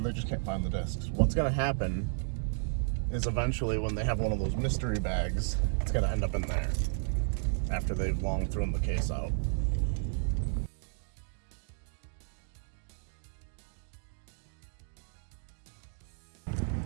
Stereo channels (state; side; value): silent; left; digital silence